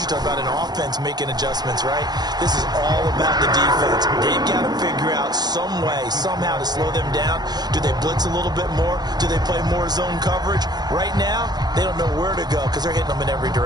talk about an offense making adjustments, right? This is all about the defense. They've got to figure out some way, somehow to slow them down. Do they blitz a little bit more? Do they play more zone coverage? Right now, they don't know where to go because they're hitting them in every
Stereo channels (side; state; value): left; late; 0.20 ms